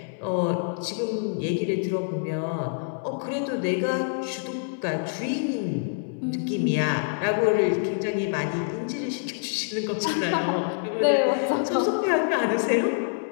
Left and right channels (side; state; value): right; silent; 61 dB below the other